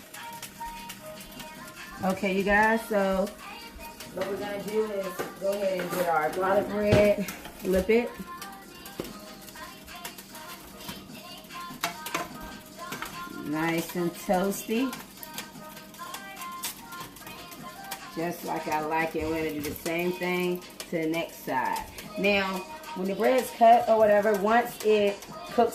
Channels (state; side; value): identical; both; correlation 1.00